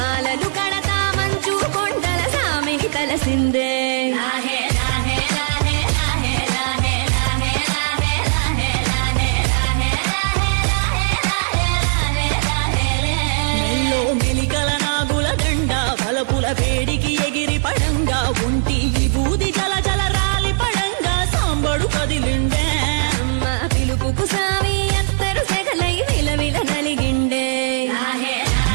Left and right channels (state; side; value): silent; left; 61 dB below the other